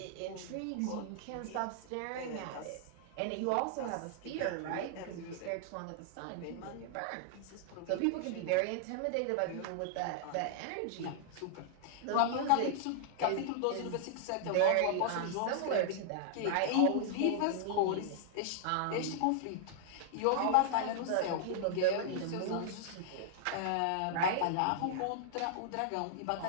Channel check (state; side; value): different; both; correlation -0.01